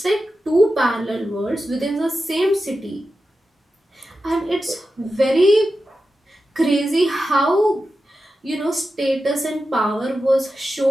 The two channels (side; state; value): both; normal; correlation 0.91